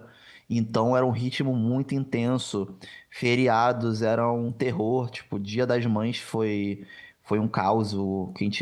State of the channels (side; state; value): both; identical; correlation 1.00